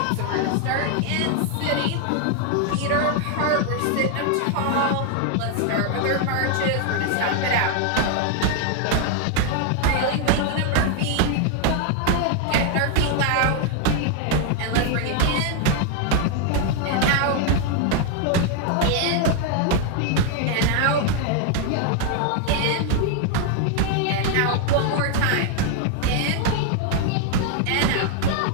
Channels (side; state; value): both; different; correlation 0.00